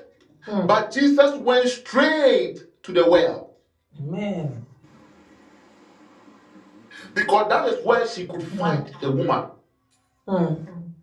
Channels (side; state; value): both; identical; correlation 1.00